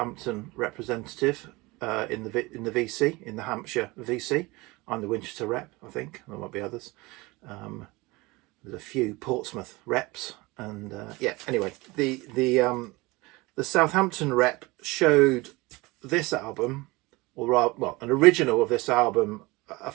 representative in the VC, in the Hampshire VC. I'm the Winchester rep, I think. There might be others. There's a few Portsmouth reps, and yeah. Anyway, the Southampton rep showed this album, or rather, well, an original of this album a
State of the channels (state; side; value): quieter; left; 22.9 dB